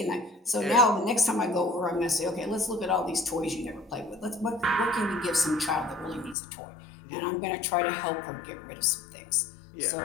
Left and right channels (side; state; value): right; drops out; at 6.4 s